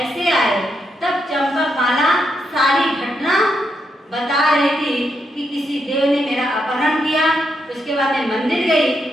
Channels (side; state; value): both; normal; correlation 0.81